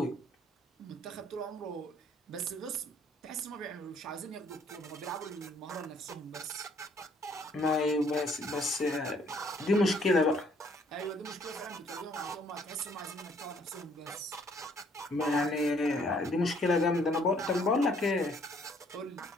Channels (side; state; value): both; normal; correlation 0.63